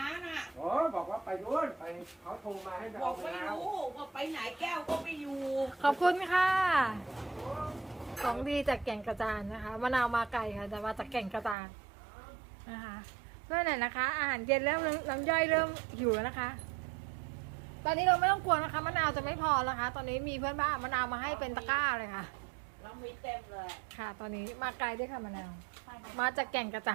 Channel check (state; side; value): drops out; left; at 11.6 s